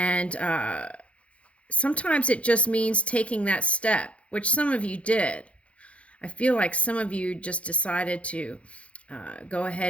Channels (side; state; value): right; late; 0.062 ms